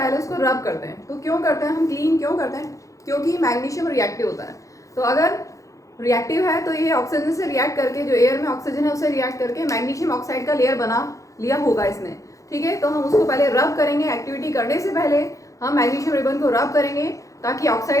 उसको रब करते हैं। तो क्यों करते हैं हम, क्लीन क्यों करते हैं? क्योंकि मैग्नीशियम रिएक्टिव होता है। तो अगर रिएक्टिव है तो ये ऑक्सीजन से रिएक्ट करके, जो एयर में ऑक्सीजन है उसे रिएक्ट करके मैग्नीशियम ऑक्साइड का लेयर बना लिया होगा इसने। ठीक है, तो हम उसको पहले रब करेंगे। एक्टिविटी करने से पहले हम मैग्नीशियम रिबन को रब करेंगे ताकि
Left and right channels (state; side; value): late; right; 0.16 ms